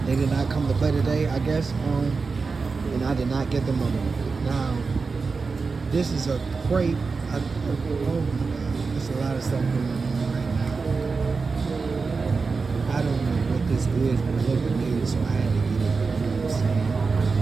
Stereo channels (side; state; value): left; quieter; 4.5 dB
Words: They did not come to play today, I guess. And I did not get the money. Now, this is a crepe. Oh my God, there's a lot of stuff going on right now. I don't know what this is, but it looked new, so I had to get it. You know what I'm saying?